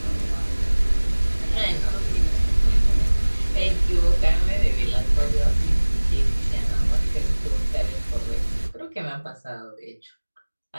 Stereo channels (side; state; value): both; inverted; correlation -1.00